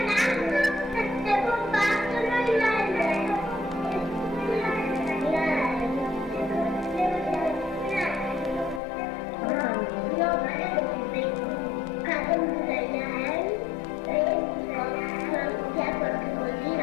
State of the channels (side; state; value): right; drops out; at 8.8 s